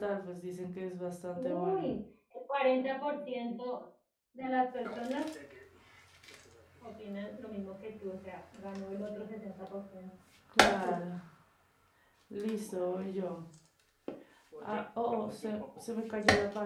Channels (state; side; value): identical; both; correlation 1.00